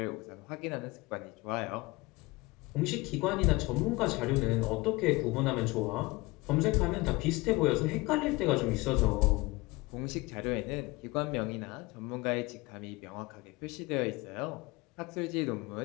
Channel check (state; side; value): quieter; right; 22.8 dB